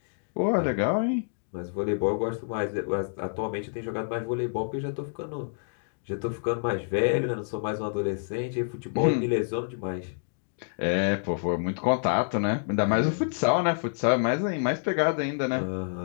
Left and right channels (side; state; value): right; silent; digital silence